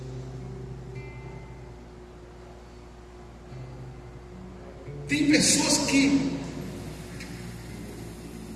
Tem pessoas que,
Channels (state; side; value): identical; both; correlation 1.00